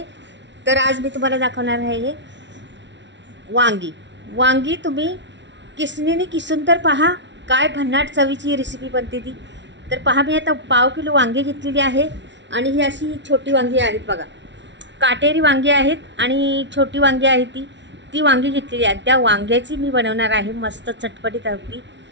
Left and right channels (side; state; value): left; late; 0.52 ms